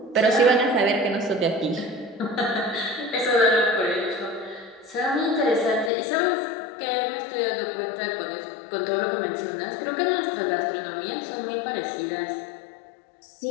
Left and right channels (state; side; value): drops out; right; at 5.9 s